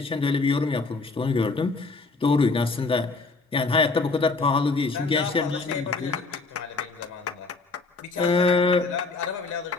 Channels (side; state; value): right; quieter; 3.8 dB